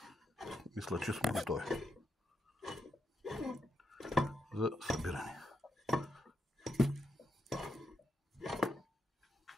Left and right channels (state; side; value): normal; both; correlation 0.82